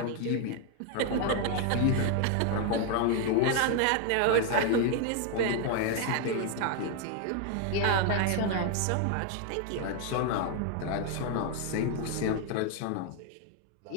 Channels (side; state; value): both; different; correlation 0.00